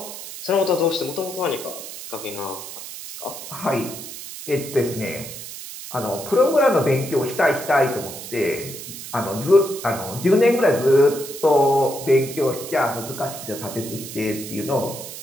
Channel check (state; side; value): noise; right; hiss, 11 dB below the sound